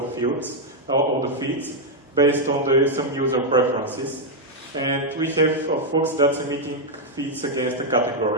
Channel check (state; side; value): normal; both; correlation -0.01